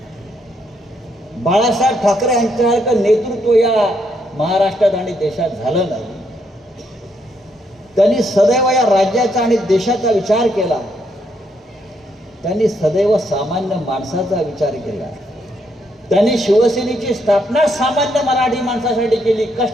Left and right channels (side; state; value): both; normal; correlation 0.75